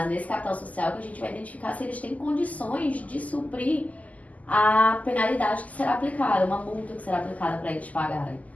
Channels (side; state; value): right; late; 0.075 ms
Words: nesse capital social que a gente vai identificar se eles têm condições de suprir a penalidade que será aplicada, uma multa que será aplicada para eles pagarem.